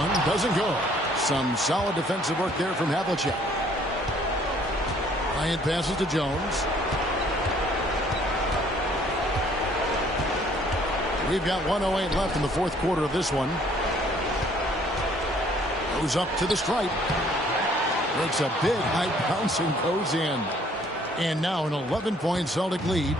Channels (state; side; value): normal; both; correlation 0.60